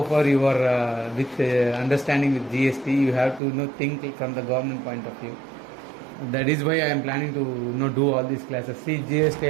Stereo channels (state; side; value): drops out; left; at 3.4 s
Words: far you are with understanding with GST. You have to think from the government point of view. That is why I am planning to do all these classes. See,